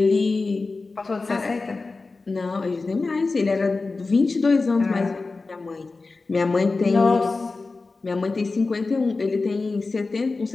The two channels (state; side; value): quieter; right; 3.8 dB